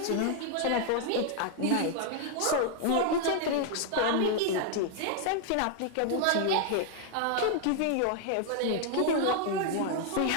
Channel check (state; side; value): different; both; correlation 0.00